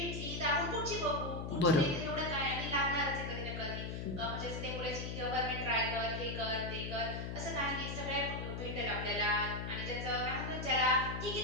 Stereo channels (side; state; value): left; noise; hum, 5 dB below the sound